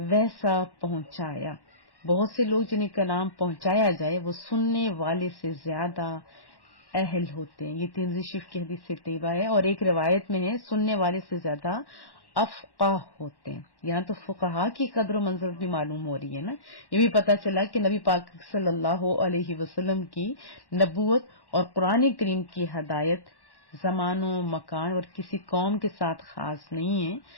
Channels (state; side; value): late; right; 1.1 ms